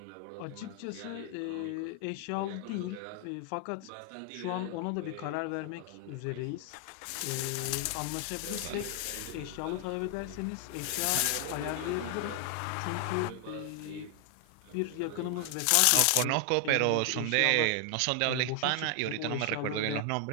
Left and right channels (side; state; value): both; different; correlation 0.00